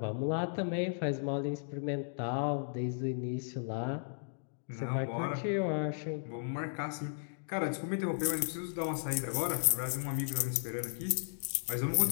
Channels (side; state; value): right; silent; digital silence